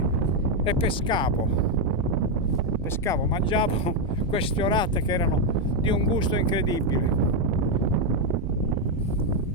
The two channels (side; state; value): both; normal; correlation 0.03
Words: e pescavo, mangiavo queste orate che erano di un gusto incredibile.